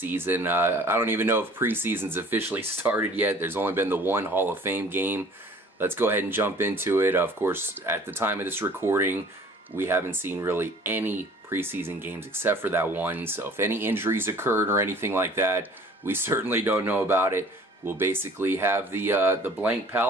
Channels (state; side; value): normal; both; correlation 0.50